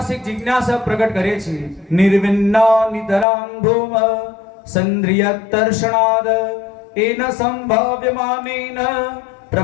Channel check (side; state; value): right; drops out; at 3.2 s